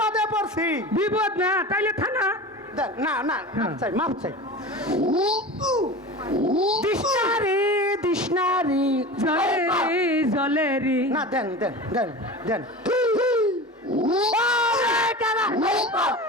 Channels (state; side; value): normal; both; correlation 0.32